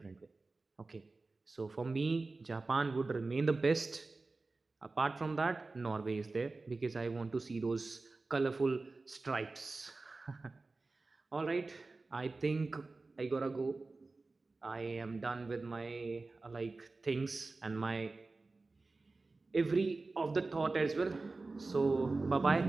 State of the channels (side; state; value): left; quieter; 3.5 dB